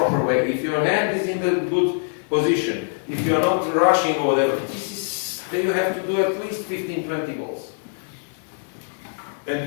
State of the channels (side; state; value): right; silent; digital silence